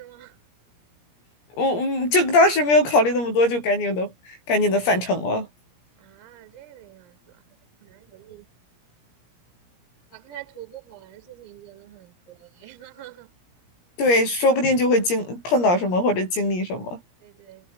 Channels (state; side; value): late; right; 17 ms